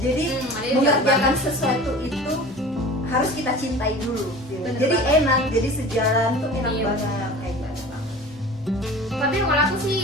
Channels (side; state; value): both; normal; correlation 0.39